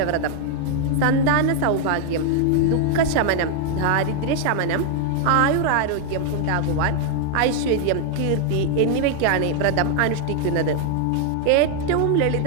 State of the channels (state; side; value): different; both; correlation 0.00